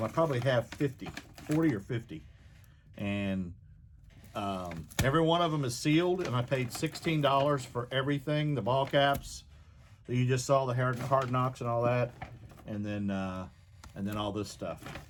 I probably have 40 or 50. And every one of them is sealed, and I paid $16 for everything, the ball caps that you just saw, the hard knocks and all that, and then all this stuff.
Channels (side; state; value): both; identical; correlation 1.00